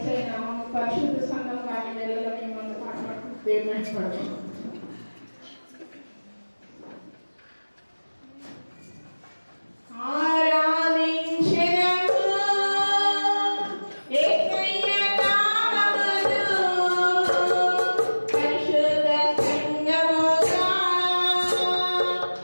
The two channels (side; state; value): both; inverted; correlation -1.00